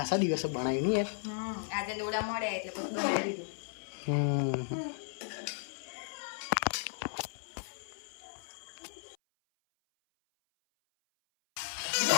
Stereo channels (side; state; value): right; silent; 54 dB below the other